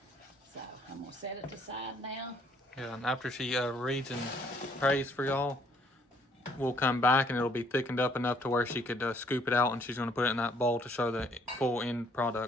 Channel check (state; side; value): normal; both; correlation 0.63